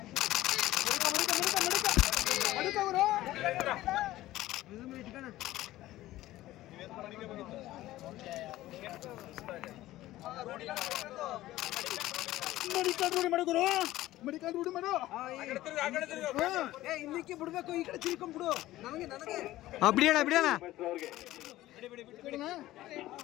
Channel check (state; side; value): quieter; right; 15.8 dB